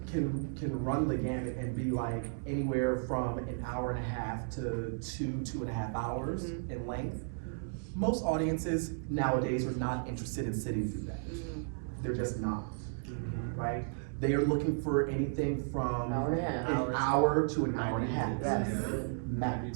can run the gamut and be like anywhere from an hour and a half to 2.5 hours in length. Most audiences nowadays are not interested in sitting through that. They're just not, right? They are looking for anything from an hour to an hour and a half.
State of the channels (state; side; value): silent; left; digital silence